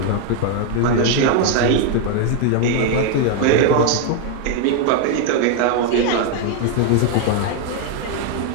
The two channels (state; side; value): different; both; correlation 0.00